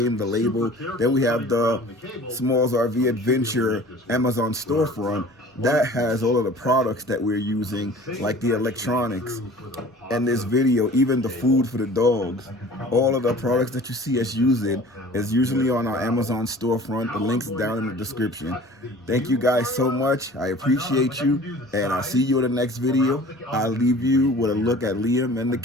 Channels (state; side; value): normal; both; correlation 0.45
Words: the label. Then we have the SmallsRV Adventure Amazon storefront that has all of the products that we're using, like the electronics and this video, even the food for the dogs. All of the products that you see us using is usually on our Amazon storefront. The link's down in the description. Thank you guys so much. I appreciate you, and I'll see you in the next video. I'll leave you with a look at Liam and the